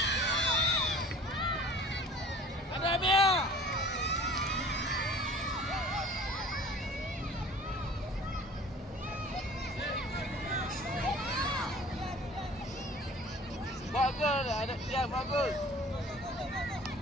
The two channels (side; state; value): both; normal; correlation 0.47